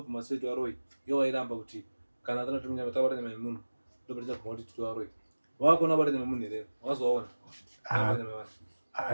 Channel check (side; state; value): both; inverted; correlation -1.00